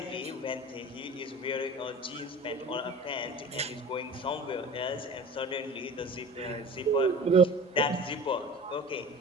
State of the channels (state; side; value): normal; both; correlation 0.39